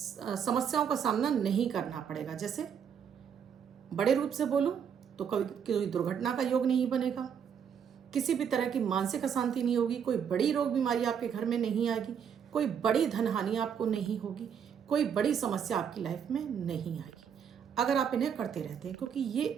का सामना नहीं करना पड़ेगा। जैसे बड़े रूप से बोलूं तो कभी कोई दुर्घटना का योग नहीं बनेगा, किसी भी तरह की मानसिक अशांति नहीं होगी, कोई बड़ी रोग बीमारी आपके घर में नहीं आएगी, कोई बड़ी धन हानि आपको नहीं होगी, कोई बड़ी समस्या आपकी लाइफ में नहीं आएगी अगर आप इन्हें करते रहते हैं। क्योंकि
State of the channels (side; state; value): left; quieter; 7.7 dB